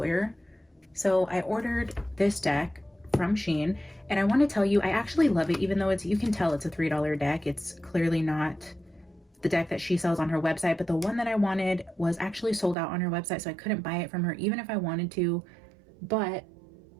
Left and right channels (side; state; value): left; drops out; at 12.8 s